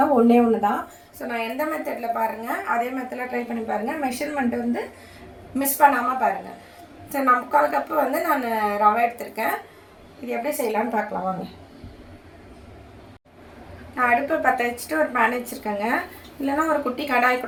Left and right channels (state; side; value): identical; both; correlation 1.00